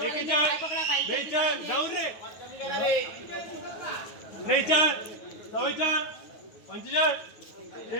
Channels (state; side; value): late; right; 9.4 ms